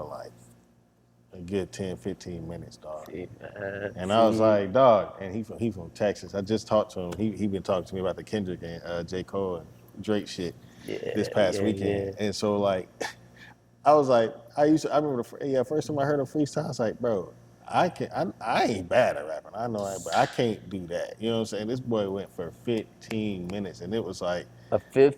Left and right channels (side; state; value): both; identical; correlation 1.00